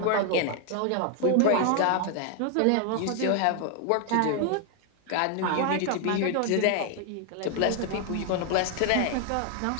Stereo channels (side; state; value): both; different; correlation 0.00